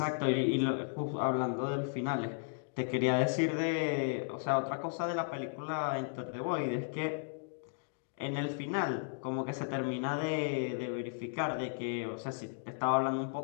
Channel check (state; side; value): silent; right; digital silence